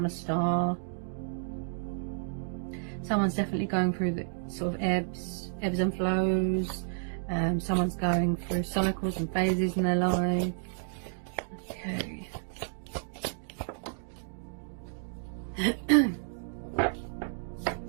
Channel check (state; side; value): silent; left; digital silence